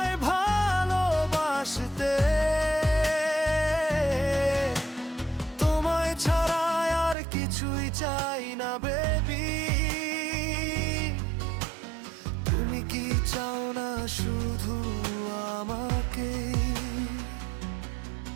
ভালোবাসতে। তোমায় ছাড়া আর কিছুই চাই না বেবি, তুমি কি চাও না শুধু আমাকে?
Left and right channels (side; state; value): left; drops out; at 7.2 s